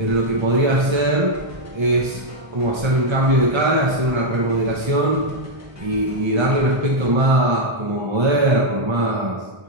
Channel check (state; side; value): late; left; 1.3 ms